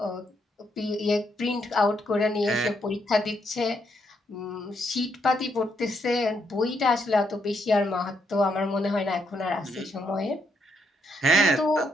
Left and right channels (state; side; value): normal; both; correlation 0.77